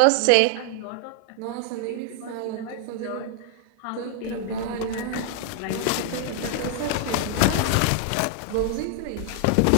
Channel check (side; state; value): both; different; correlation 0.00